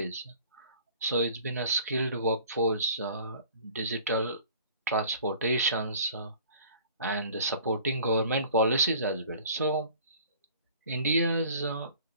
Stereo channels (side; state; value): both; inverted; correlation -0.49